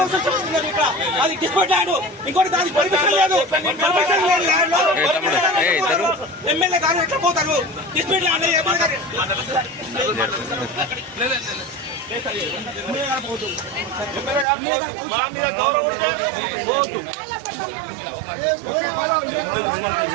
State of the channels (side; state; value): left; drops out; at 14.5 s